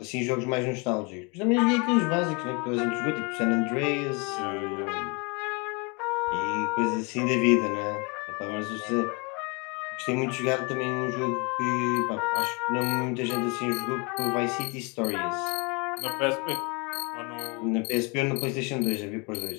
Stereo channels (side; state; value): right; quieter; 30.5 dB